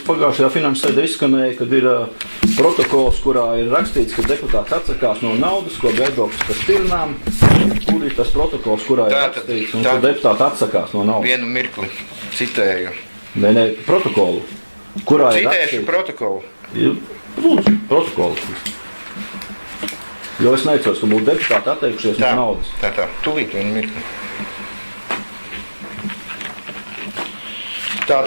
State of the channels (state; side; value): inverted; both; correlation -1.00